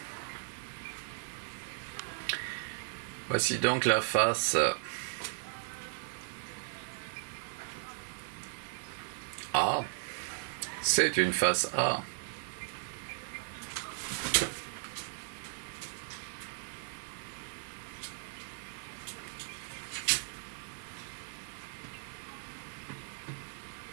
la face A. C'est une face A.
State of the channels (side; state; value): left; silent; digital silence